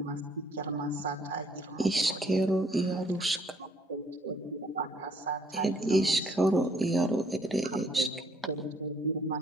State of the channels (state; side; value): normal; both; correlation 0.64